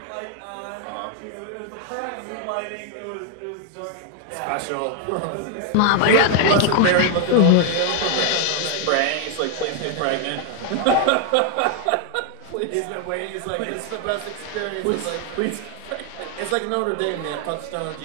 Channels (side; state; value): both; different; correlation 0.00